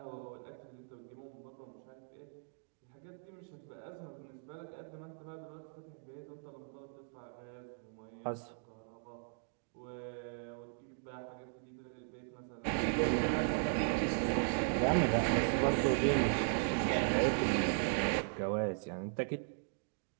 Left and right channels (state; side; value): silent; left; digital silence